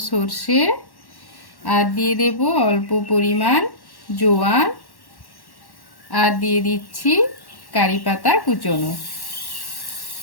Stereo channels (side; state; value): right; late; 1.1 ms